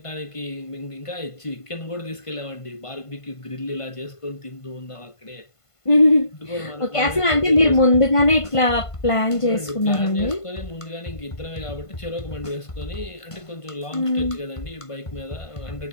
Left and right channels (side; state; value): right; late; 1.5 ms